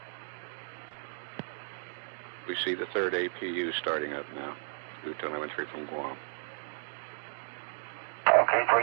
We see the third APU starting up now through telemetry from Guam. Okay,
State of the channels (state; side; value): silent; left; digital silence